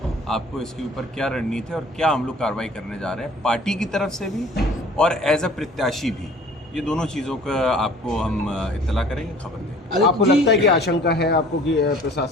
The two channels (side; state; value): both; normal; correlation 0.50